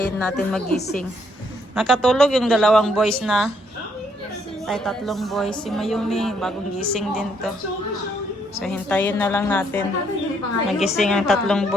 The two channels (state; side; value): normal; both; correlation 0.71